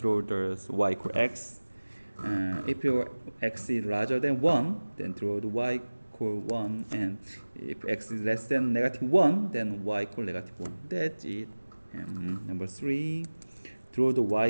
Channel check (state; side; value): inverted; both; correlation -1.00